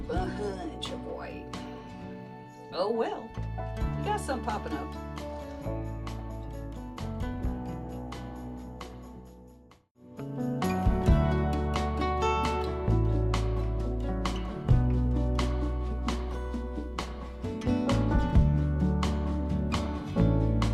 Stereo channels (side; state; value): both; identical; correlation 1.00